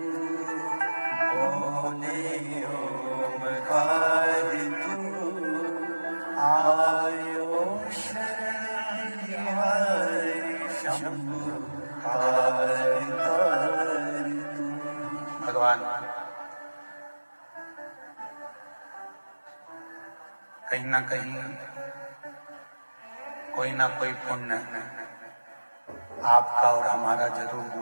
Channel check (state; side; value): inverted; both; correlation -1.00